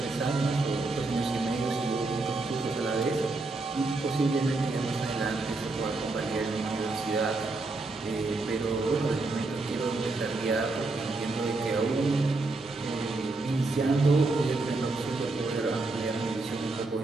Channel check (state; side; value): quieter; left; 3.4 dB